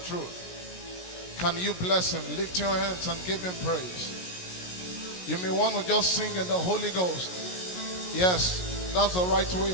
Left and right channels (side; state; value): right; late; 17 ms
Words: truth. Can you bless him? Lift your hands and give him praise. You may want to just sing in the Holy Ghost. Yes, that's the right way